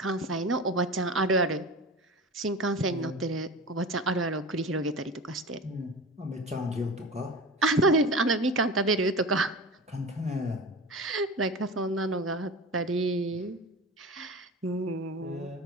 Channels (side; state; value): both; normal; correlation 0.32